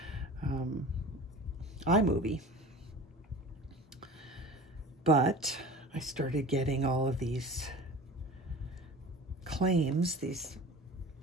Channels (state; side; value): normal; both; correlation 0.38